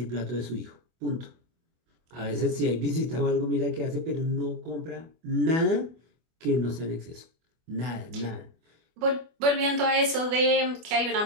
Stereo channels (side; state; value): left; late; 24 ms